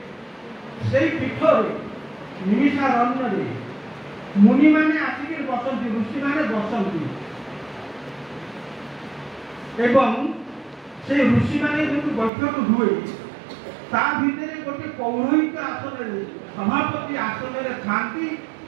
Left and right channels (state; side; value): drops out; left; at 12.3 s